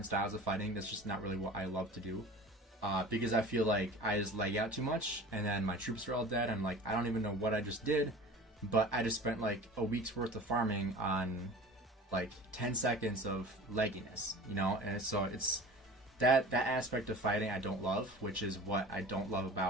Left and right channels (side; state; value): both; normal; correlation 0.40